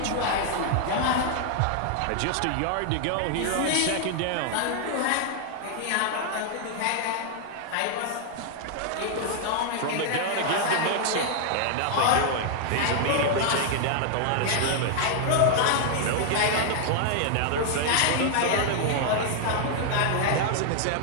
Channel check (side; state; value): both; different; correlation 0.00